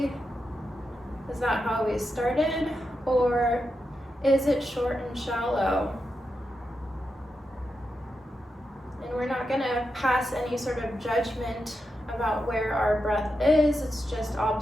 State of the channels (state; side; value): normal; both; correlation 0.87